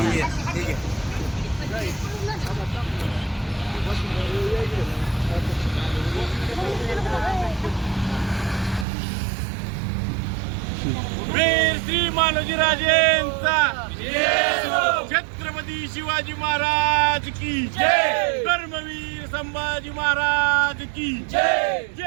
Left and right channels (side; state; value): left; drops out; at 8.8 s